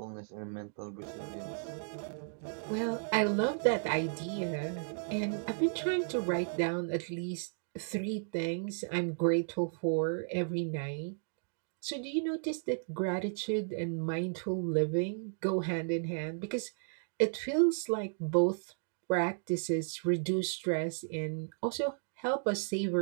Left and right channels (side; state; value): left; silent; digital silence